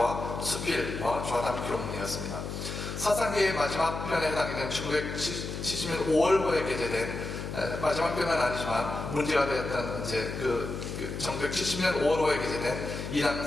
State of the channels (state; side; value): noise; left; hum, 6 dB below the sound